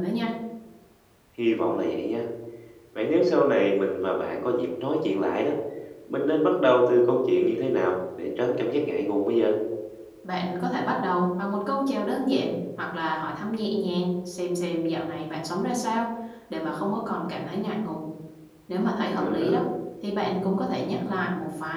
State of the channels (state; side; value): identical; both; correlation 1.00